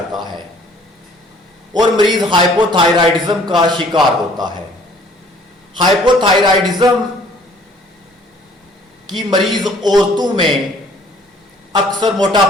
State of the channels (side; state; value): both; normal; correlation 0.56